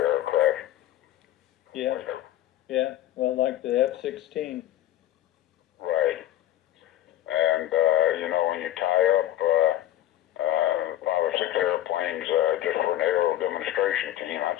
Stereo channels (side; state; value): right; quieter; 13.2 dB